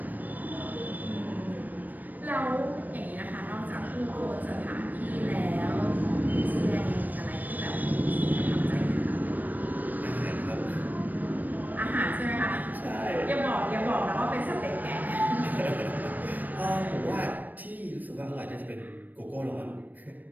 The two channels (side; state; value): left; late; 0.085 ms